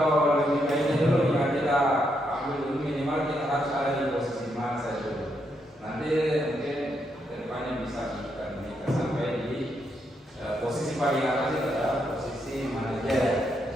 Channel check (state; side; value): normal; both; correlation 0.79